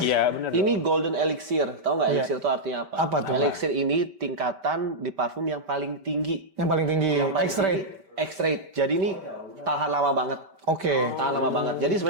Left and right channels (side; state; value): left; late; 5.1 ms